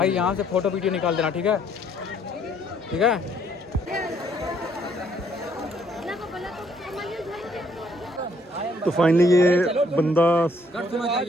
यहाँ से फ़ोटो वीडियो निकाल देना, ठीक है, ठीक है। तो फाइनली ये बंदा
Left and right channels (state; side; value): normal; both; correlation 0.66